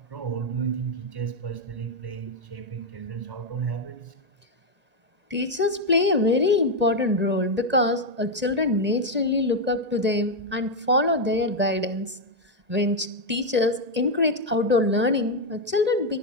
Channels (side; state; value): left; late; 1.9 ms